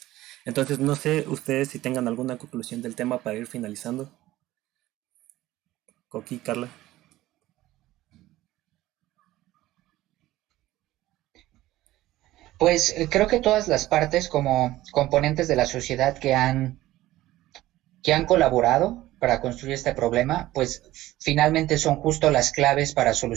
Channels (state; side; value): quieter; left; 16.1 dB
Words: Entonces no sé ustedes si tengan alguna conclusión del tema para ir finalizando. Coqui, Carla. Pues creo que todas las partes como componentes de la sociedad que han colaborado para construir este problema, pues finalmente son justo las claves para